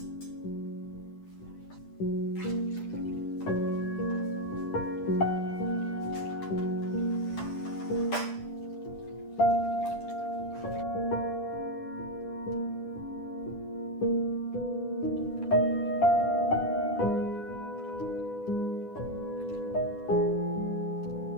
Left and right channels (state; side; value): late; right; 10 ms